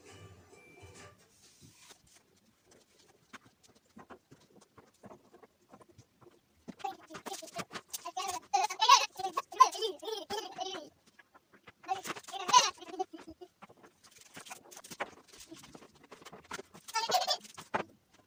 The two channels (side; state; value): both; identical; correlation 1.00